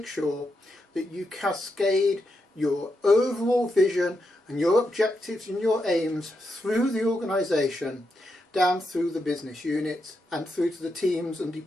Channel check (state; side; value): normal; both; correlation 0.84